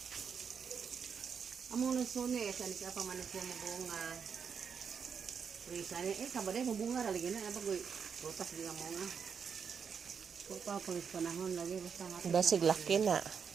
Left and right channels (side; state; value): left; quieter; 6.6 dB